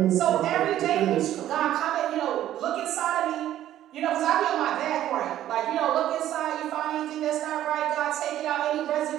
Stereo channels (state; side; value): quieter; left; 12.4 dB